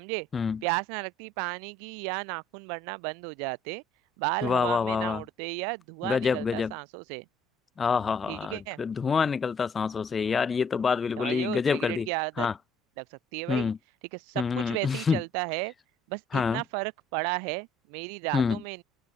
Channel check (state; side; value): normal; both; correlation 0.62